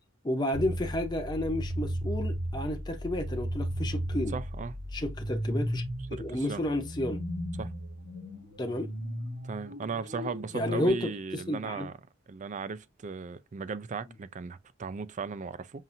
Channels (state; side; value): normal; both; correlation 0.70